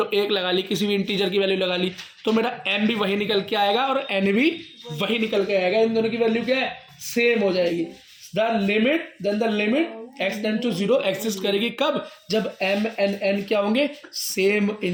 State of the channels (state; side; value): identical; both; correlation 1.00